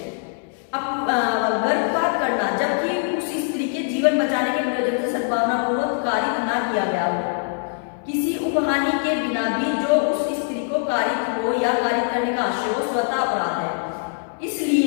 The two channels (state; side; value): silent; right; 64 dB below the other